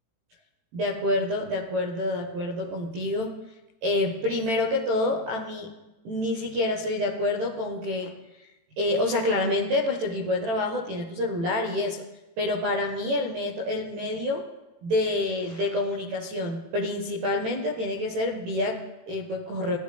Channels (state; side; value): late; left; 18 ms